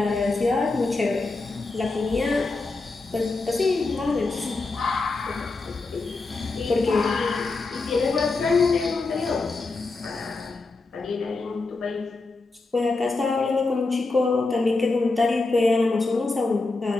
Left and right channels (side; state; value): right; quieter; 3.6 dB